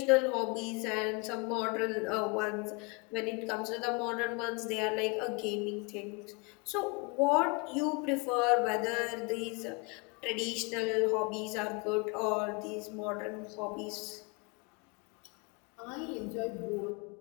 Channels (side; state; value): right; quieter; 29.5 dB